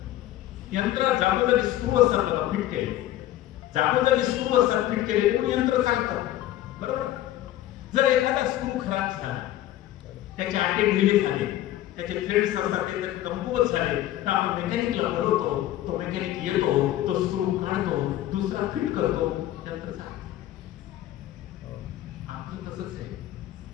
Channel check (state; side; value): quieter; right; 13.8 dB